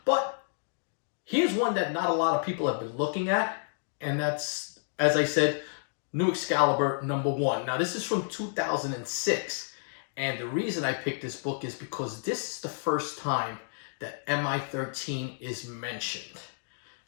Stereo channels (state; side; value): silent; right; digital silence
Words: But here's one that not a lot of people have been looking at, and that's, as I said, New Excalibur #1. Now, this is from 2006. And the reason I picked this book is because this is the first time that MI-13 is mentioned.